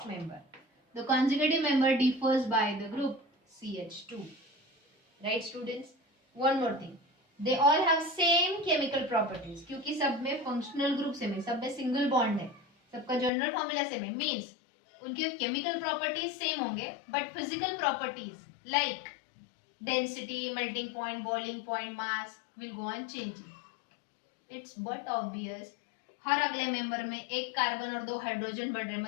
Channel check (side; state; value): right; drops out; at 13.3 s